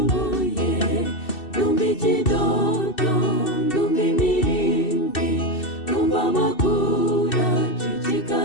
Ndumva ikidodo, ndumva imirindi, ndumva amakuru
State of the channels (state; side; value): late; right; 2.7 ms